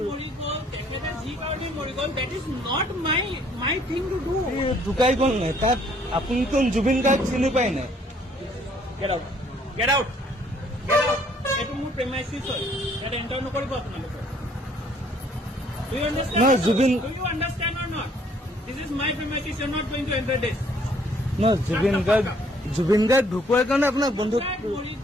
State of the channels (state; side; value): normal; both; correlation 0.62